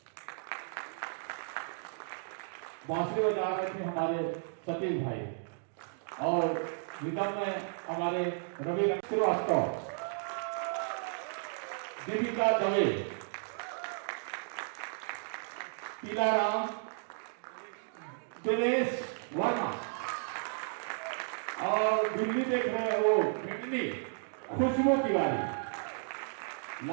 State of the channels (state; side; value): silent; left; digital silence